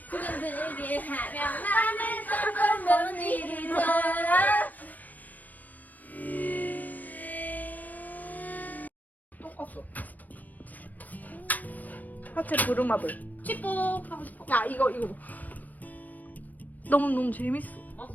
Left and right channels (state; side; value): late; right; 0.082 ms